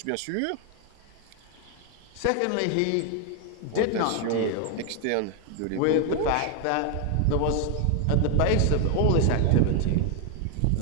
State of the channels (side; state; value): both; different; correlation 0.01